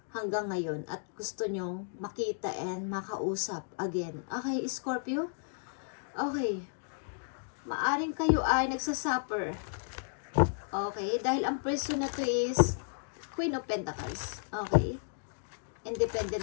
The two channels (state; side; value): silent; right; digital silence